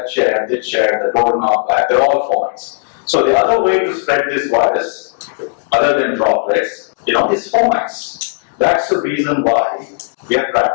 chair, the doorknob, they're all fomites. So the other way to spread this virus, other than droplets, is fomites. That's the reason why we are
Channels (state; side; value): silent; right; digital silence